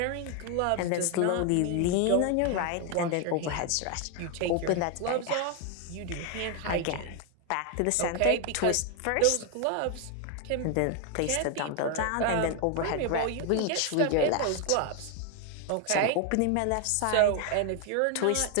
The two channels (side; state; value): both; different; correlation 0.01